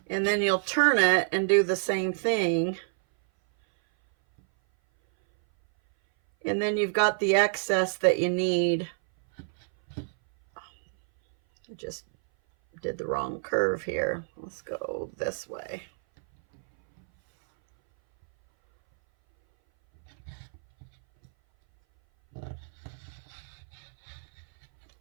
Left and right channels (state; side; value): silent; left; 58 dB below the other